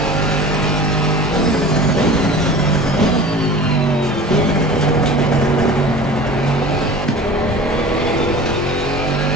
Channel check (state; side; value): normal; both; correlation 0.39